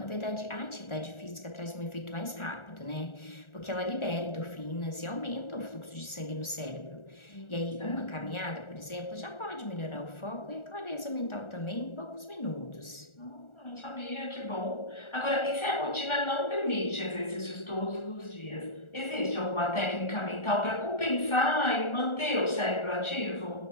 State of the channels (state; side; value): late; right; 1.4 ms